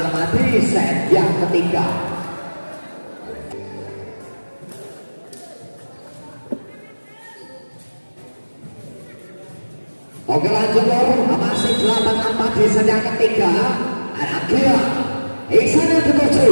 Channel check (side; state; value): both; inverted; correlation -1.00